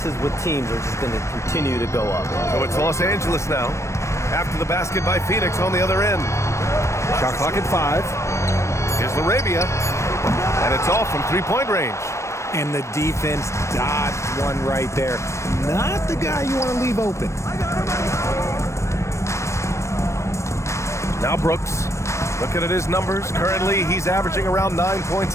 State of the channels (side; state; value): right; late; 0.14 ms